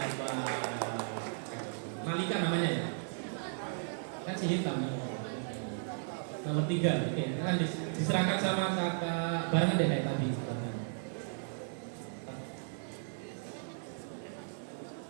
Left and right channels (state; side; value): silent; left; digital silence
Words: Malika namanya ya. Kasih hitam. Nomor 3. Oke, akan diserahkan sama kakak barengan deh kayak tadi.